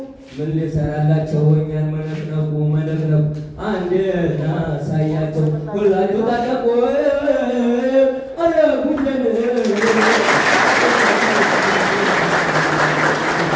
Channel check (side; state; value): both; identical; correlation 1.00